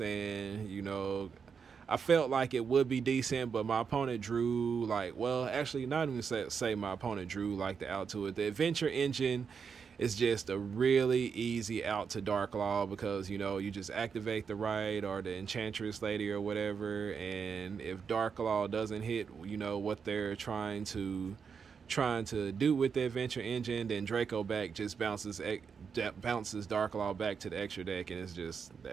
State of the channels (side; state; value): left; quieter; 6.2 dB